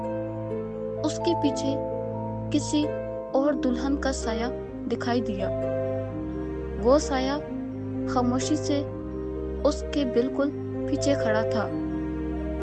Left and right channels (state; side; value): identical; both; correlation 1.00